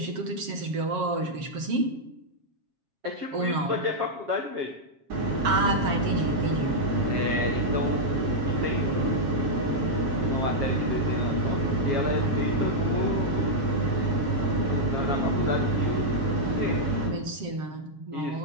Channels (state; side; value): late; left; 7.4 ms